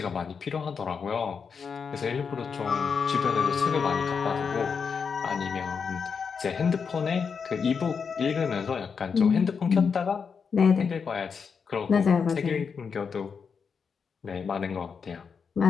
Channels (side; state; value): right; quieter; 6.0 dB